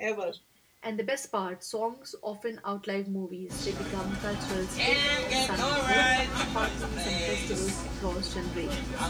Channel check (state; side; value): identical; both; correlation 1.00